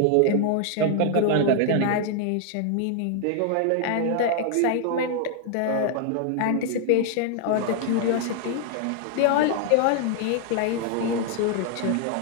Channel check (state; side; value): different; both; correlation 0.00